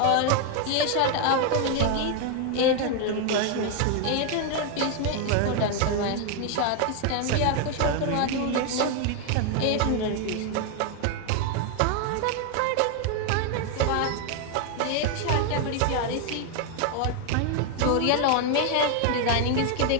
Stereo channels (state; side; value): different; both; correlation 0.01